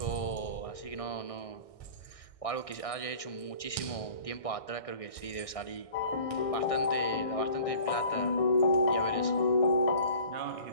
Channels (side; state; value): right; late; 1.6 ms